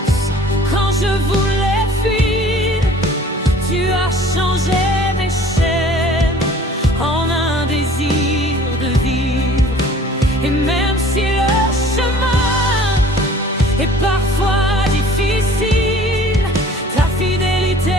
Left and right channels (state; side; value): normal; both; correlation 0.50